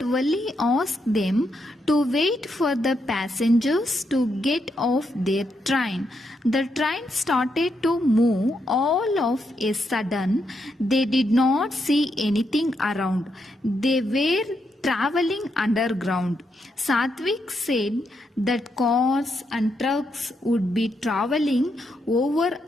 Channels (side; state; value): both; normal; correlation 0.80